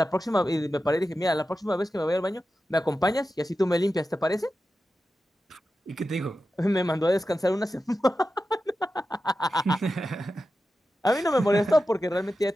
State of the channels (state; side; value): normal; both; correlation 0.92